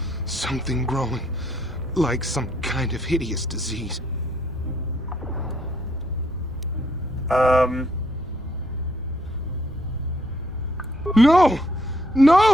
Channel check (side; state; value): both; normal; correlation 0.69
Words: Something growing. Like some kind of hideous disease. No!